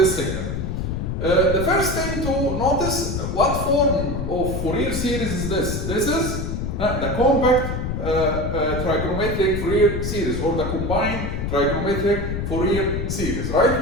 signal. The first thing to notice, what form of Fourier series is this? This is the compact trigonometric Fourier series, or the combined trigonometric Fourier series, right?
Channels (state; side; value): noise; left; rumble, 3 dB below the sound